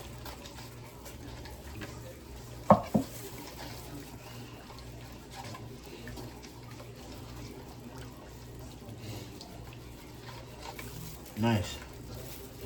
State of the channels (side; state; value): both; identical; correlation 1.00